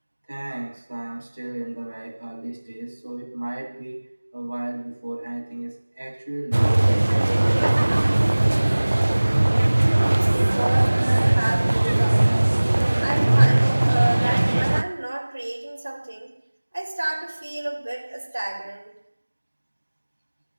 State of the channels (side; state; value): both; inverted; correlation -1.00